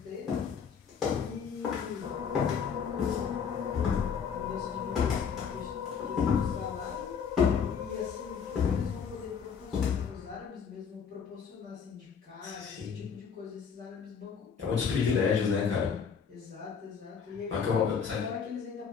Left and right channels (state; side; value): quieter; right; 6.6 dB